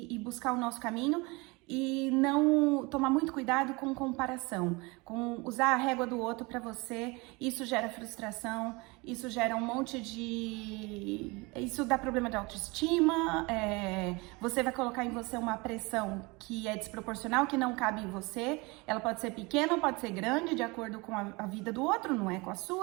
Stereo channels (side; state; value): left; quieter; 25.9 dB